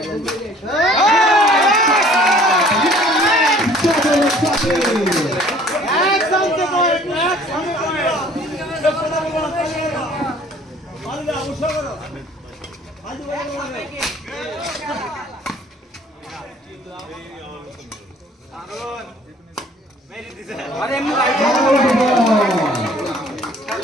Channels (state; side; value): normal; both; correlation 0.54